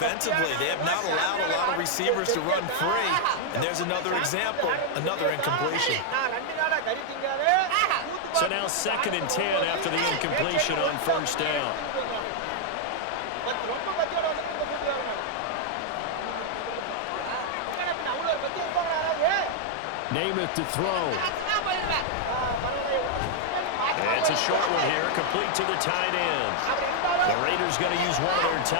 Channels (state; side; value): different; both; correlation 0.00